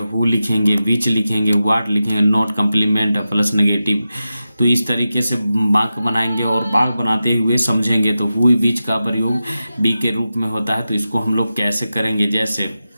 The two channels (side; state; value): both; inverted; correlation -0.92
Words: हु लिखेंगे, बीच लिखेंगे, व्हाट लिखेंगे, नॉट कंप्लीमेंट प्लस नेगेटिव। तो इस तरीके से वाक्य बनाएंगे और वाक्य बनाते हुए समझेंगे। तो हु बीच का प्रयोग बी के रूप में होता है, तो इसको हम लोग कैसे करेंगे, जैसे